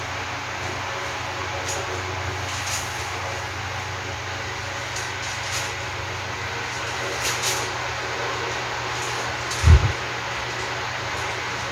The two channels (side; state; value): both; identical; correlation 1.00